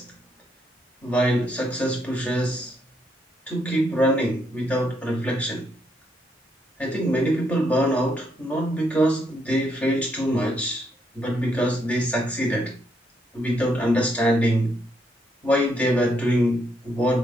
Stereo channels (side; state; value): both; normal; correlation 0.75